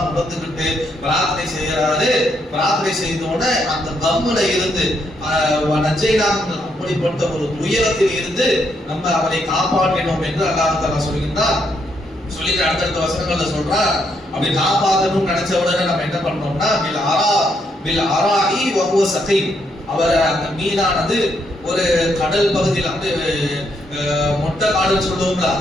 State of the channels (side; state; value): both; normal; correlation 0.76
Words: உணர்ந்துகிட்டு பிரார்த்தனை செய்யறாரு. பிரார்த்தனை செய்தோட அந்த கம்முல இருந்து அப்படிப்பட்ட ஒரு துயரத்தில் இருந்து நம்ம அவரை காப்பாற்றினோம் என்று அல்லாஹ் தஆலா சொல்கின்றார். சொல்லிட்டு அடுத்தடுத்த வசனங்கள்ல சொல்றார், அப்படி காப்பாற்றணும்னு நினைச்ச உடனே நம்ம என்ன பண்ணோம்னா பில் அராஇ வஹுவ சகீம், அவர் அந்த மீனானது ஒரு கடல் பகுதியில் வந்து மொட்டை காடுன்னு சொல்லுவோம்ல,